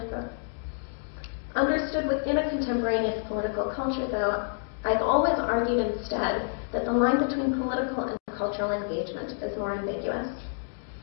quote. Understood within a contemporaneous political culture, though, I've always argued instead that the line between political and cultural engagement is more ambiguous.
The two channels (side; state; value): right; silent; digital silence